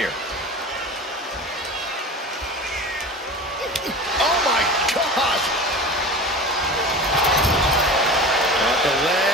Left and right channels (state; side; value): normal; both; correlation 0.33